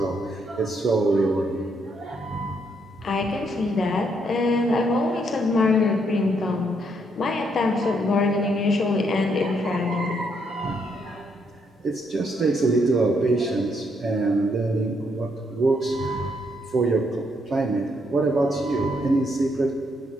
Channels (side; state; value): both; normal; correlation 0.74